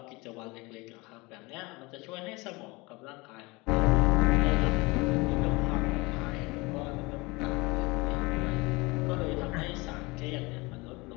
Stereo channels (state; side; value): quieter; right; 24.6 dB